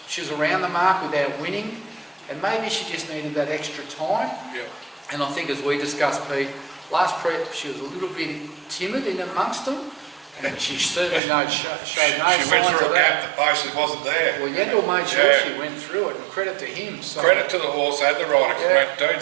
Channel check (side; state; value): left; drops out; at 11.2 s